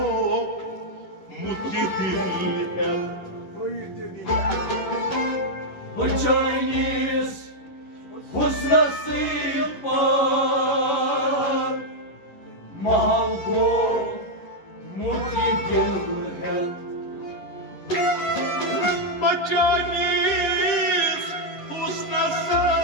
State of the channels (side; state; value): right; late; 11 ms